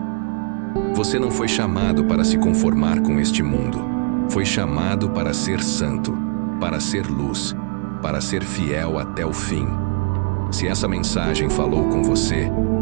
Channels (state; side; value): quieter; left; 36.4 dB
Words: Você não foi chamado para se conformar com este mundo. Foi chamado para ser santo, para ser luz, para ser fiel até o fim. Se essa mensagem falou com você,